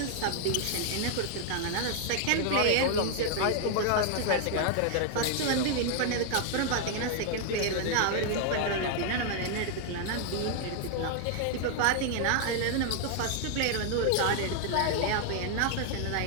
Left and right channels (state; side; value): different; both; correlation 0.00